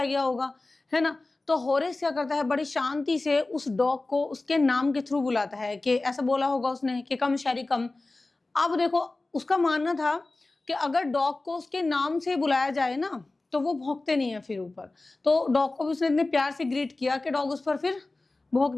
गया होगा, है ना। तो होरेस क्या करता है, बड़ी शांति से उस डॉग को उसके नाम के थ्रू बुलाता है, कि ऐसा बोला होगा उसने कि कम शेरी कम। अब देखो उसका मानना था कि अगर डॉग को उसके नाम से बुलाया जाए ना तो वो भौंकते नहीं है फिर ऊपर। तो डॉग को भी उसने इतने प्यार से ग्रीट किया कि डॉग उस पर फिर भौंक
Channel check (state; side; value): quieter; right; 3.1 dB